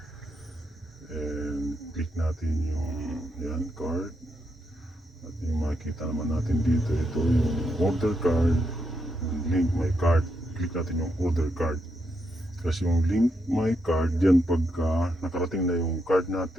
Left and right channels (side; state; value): both; normal; correlation 0.81